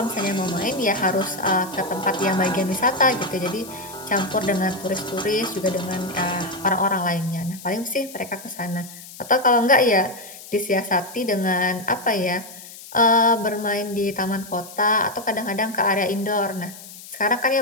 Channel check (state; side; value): noise; left; hiss, 16 dB below the sound